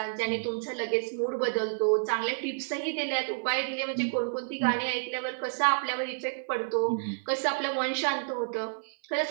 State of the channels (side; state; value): left; silent; 58 dB below the other